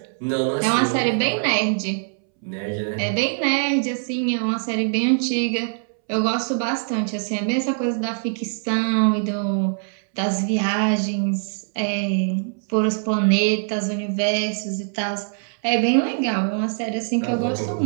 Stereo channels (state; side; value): silent; left; 64 dB below the other